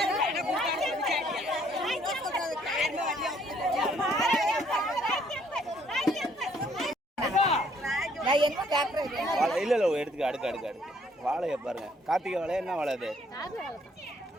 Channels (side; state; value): both; normal; correlation 0.65